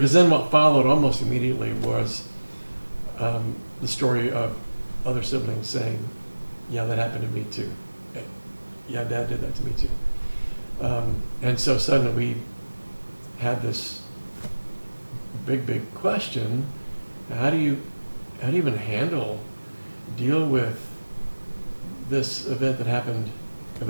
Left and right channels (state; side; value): inverted; both; correlation -1.00